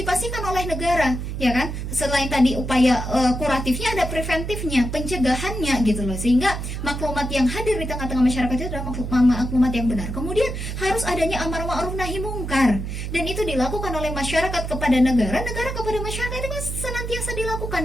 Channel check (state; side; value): noise; right; hum, 5 dB below the sound